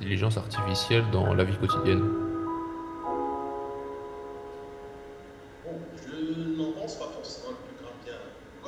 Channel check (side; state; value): both; identical; correlation 1.00